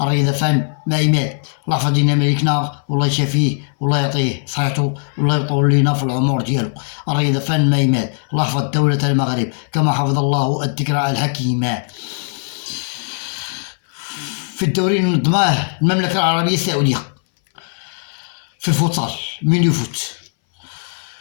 فن ما يمات، الله يحفظ لنا ملكنا والله يشافيه والله يعطيه صحته والله يطول لنا في العمر ديالو. الرياضة فن ما يمات، الله يحفظ دولة المغرب كما حفظ الله الذكرى الحكيمة. في الدوري اللي نظماه المملكة العربية السعودية في الفوتسال ميني فوت،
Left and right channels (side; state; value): right; silent; 64 dB below the other